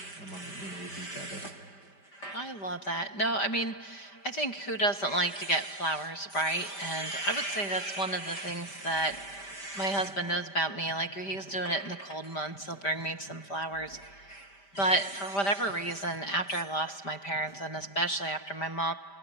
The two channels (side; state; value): right; late; 5.1 ms